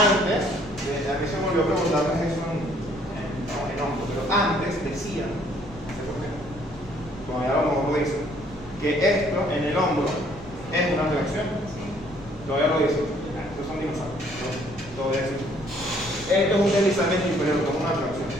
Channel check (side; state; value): right; noise; rumble, 18 dB below the sound